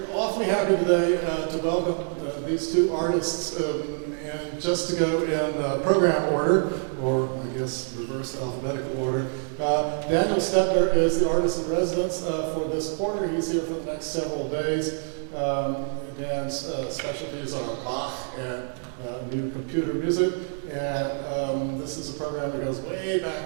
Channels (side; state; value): left; silent; 61 dB below the other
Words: awfully happy today to welcome these two artists, and just to go in program order, or I guess reverse alphabetical order. Daniel Stepner is the artist in residence for this quarter. He's here for the next several days. Dan's specialties are Bach and new computer music. And this is a program that goes way